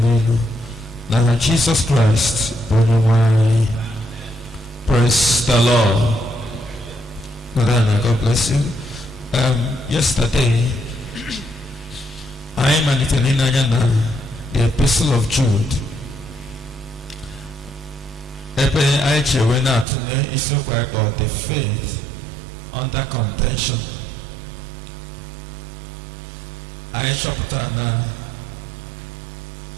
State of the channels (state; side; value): drops out; left; at 19.9 s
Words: n'aha Jesus Christ bụ onye nwe anyị. Praise the Lord. God bless you. Yesterday I malitere ịnanya na the Epistle of Jude. Ebe anyị chewe na-atụle isiokwu anyị kpọrọ the faith under contention. Anyị chọpụtara na